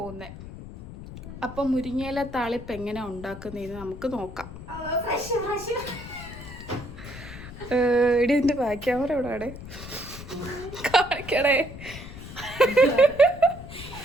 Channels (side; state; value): left; noise; rumble, 13 dB below the sound